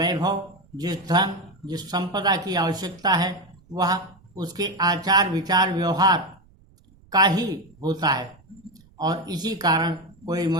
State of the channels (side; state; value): right; noise; rumble, 29 dB below the sound